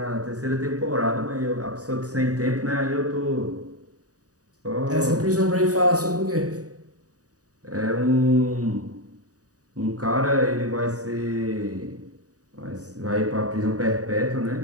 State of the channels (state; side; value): late; left; 0.67 ms